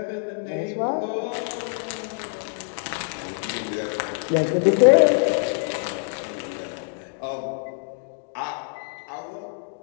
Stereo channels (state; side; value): silent; right; digital silence